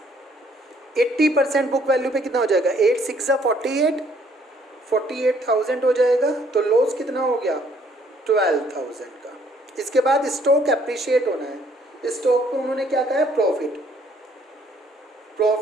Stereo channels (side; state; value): both; normal; correlation 0.64